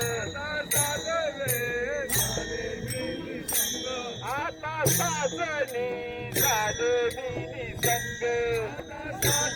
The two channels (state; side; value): identical; both; correlation 1.00